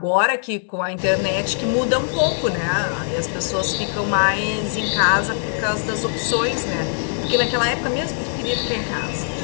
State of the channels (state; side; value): silent; right; digital silence